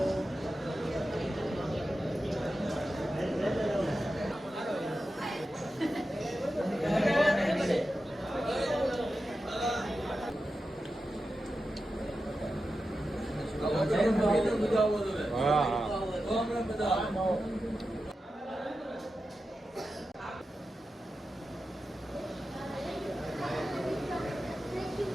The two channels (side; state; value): both; normal; correlation 0.91